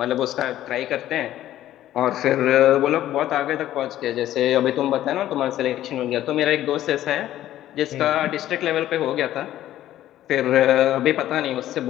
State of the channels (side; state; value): right; quieter; 13.1 dB